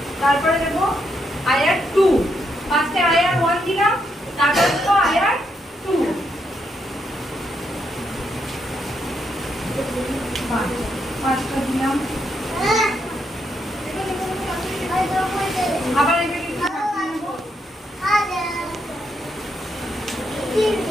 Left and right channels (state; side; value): normal; both; correlation 0.78